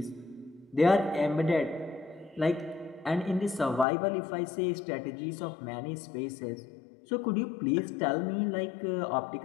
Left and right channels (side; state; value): right; drops out; at 3.9 s